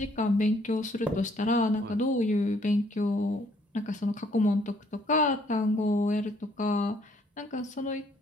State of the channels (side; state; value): both; normal; correlation 0.65